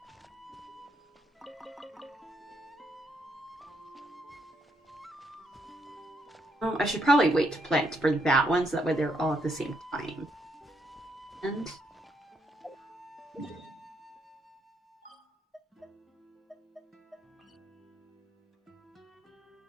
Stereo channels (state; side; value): normal; both; correlation 0.76